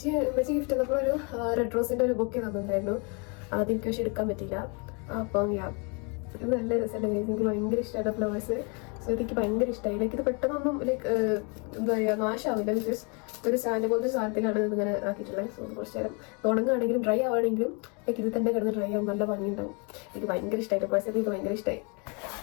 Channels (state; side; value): quieter; right; 33.6 dB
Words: ഗിഫ്റ്റ് തന്നപ്പോൾ ഒരു റെഡ് റോസിൻ്റെ ഒരു ബൊക്കെ തന്നിട്ടുണ്ടായിരുന്നു. അതെനിക്ക് പക്ഷെ എടുക്കാൻ പറ്റിയില്ല. അപ്പം ഇത് നല്ല രസമല്ലേ ഗൈസ്. എനിക്ക് ഭയങ്കര ഇഷ്ടമായിട്ട് ഫ്ലവേഴ്സ്. സോ എനിക്ക് ഭയങ്കര ഇഷ്ടമായി. ലൈക്ക് ഇത് പെട്ടെന്നൊന്നും ലൈക്ക് എന്താ പറയുക നാശമാവില്ല. ബിക്കോസ് ഒരു സ്റ്റാൻഡ് പോലത്തെ സാധനത്തിലാണ് ഇതിങ്ങനെ ആക്കിയിട്ടുള്ളത്. സോ കുറച്ച് നേരം ഉണങ്ങുകയാണെങ്കിലും ഡ്രൈ ആവുകയാണെങ്കിലും ലൈക്ക് ഇത് തന്നെ കിടന്ന് ഡ്രൈ ആവും. നല്ല ഭംഗിയുണ്ടാവും. എനിക്ക് ഭയങ്കര ഇഷ്ടമായിട്ട് പേഴ്സണലി എനിക്ക് ഭയങ്കര ഇഷ്ടമായി.